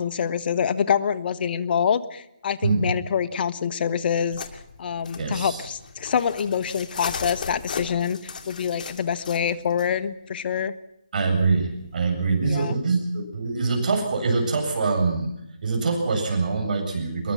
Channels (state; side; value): inverted; both; correlation -0.67